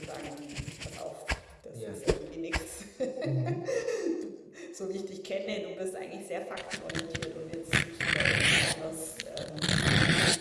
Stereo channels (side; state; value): both; identical; correlation 1.00